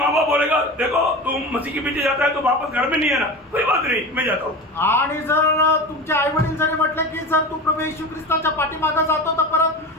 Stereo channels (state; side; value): normal; both; correlation 0.29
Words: बाप बोलेगा देखो तुम मसीह के पीछे जाता है तो वापस घर में नहीं है ना, कोई बात नहीं मैं जाता हूँ। आणि जर तुमचे आई वडील जरी म्हटले की जर तू प्रभू येशू ख्रिस्ताच्या पाठीमागे जातो तर परत